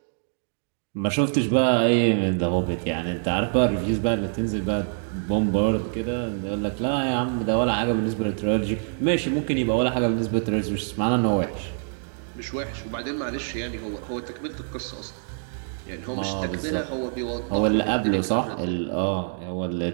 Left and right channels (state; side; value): silent; left; digital silence